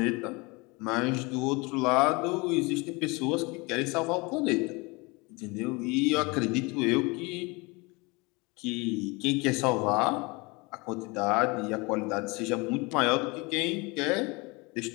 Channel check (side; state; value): right; quieter; 26.5 dB